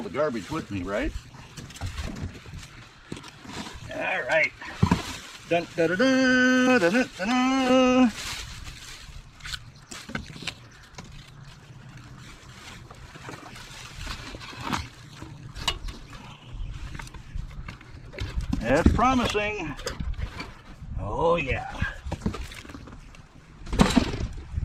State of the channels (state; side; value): identical; both; correlation 1.00